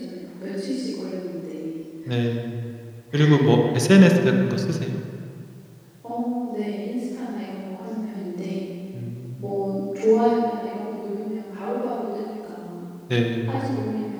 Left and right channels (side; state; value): both; identical; correlation 1.00